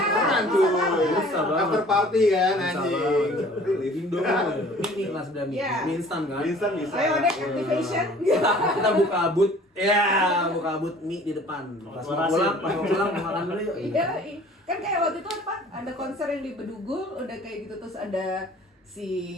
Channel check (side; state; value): both; normal; correlation 0.50